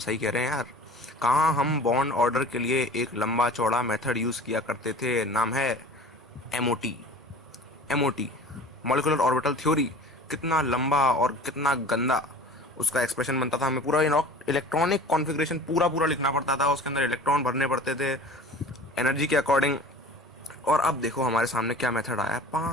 कह रहे हैं यार। कहाँ हम बॉन्ड ऑर्डर के लिए एक लंबा चौड़ा मेथड यूज किया करते थे, नाम है MOT. MOT, molecular orbital theory. कितना लंबा और कितना गंदा उसका एक्सप्रेशन बनता था। हमें पूरा इलेक्ट्रॉनिक कॉन्फ़िगरेशन पूरा लिखना पड़ता था, उसके अंदर इलेक्ट्रॉन भरने पड़ते थे एनर्जी के अकॉर्डिंग। और अब देखो हमारे सामने क्या मेथड आया है।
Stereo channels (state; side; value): normal; both; correlation 0.41